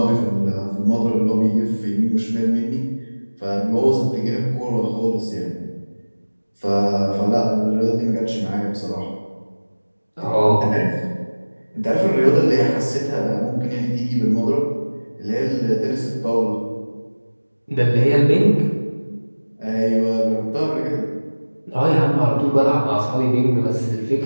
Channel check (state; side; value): inverted; both; correlation -1.00